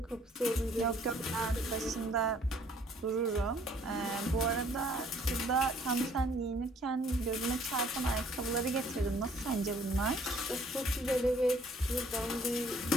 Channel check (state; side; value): normal; both; correlation 0.60